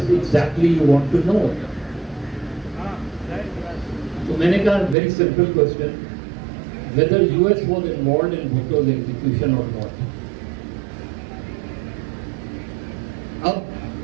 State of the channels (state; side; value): drops out; left; at 5.0 s